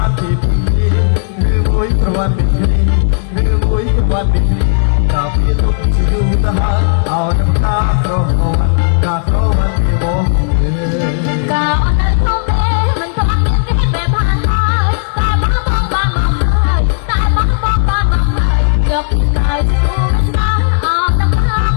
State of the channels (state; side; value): silent; right; digital silence